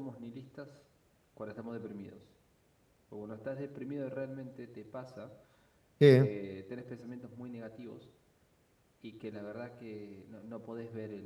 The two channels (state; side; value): identical; both; correlation 1.00